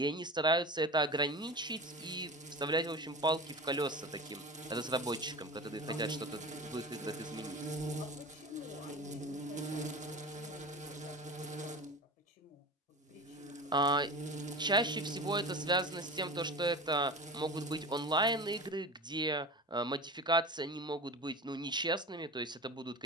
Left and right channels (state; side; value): normal; both; correlation 0.31